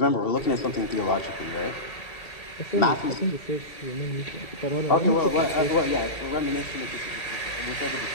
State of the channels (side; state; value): right; late; 1.8 ms